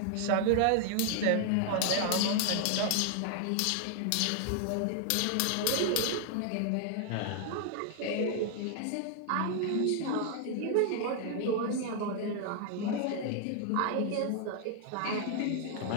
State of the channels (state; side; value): different; both; correlation 0.00